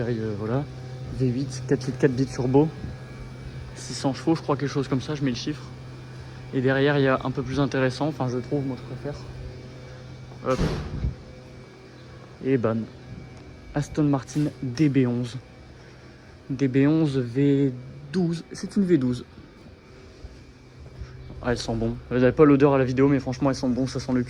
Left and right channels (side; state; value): both; identical; correlation 1.00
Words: voilà. V8, 4 litres 4 bits turbo. 600 chevaux, je crois, quelque chose comme ça, je mets le chiffre. Et derrière, il y a un peu plus intéressant, enfin je trouve, moi je préfère. Hop. Et bam. Aston Martin DB11. DB11 V12, c'est une V12. Ah, elles sont bonnes. Vous n'avez pas l'odeur à la vidéo, mais franchement elles sont bonnes, ça sent le